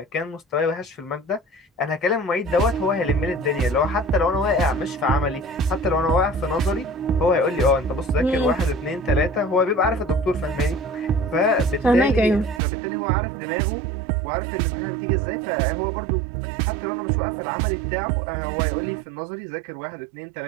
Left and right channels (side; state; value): left; drops out; at 12.6 s